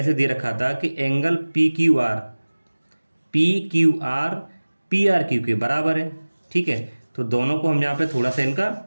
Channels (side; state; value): both; inverted; correlation -1.00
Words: से दे रखा था कि एंगल PQR PRQ के बराबर है, ठीक है। तो दोनों को हम यहाँ पे थोड़ा सा